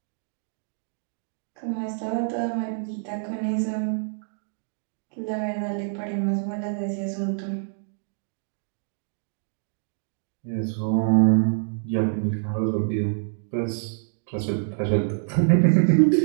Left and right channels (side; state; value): left; silent; digital silence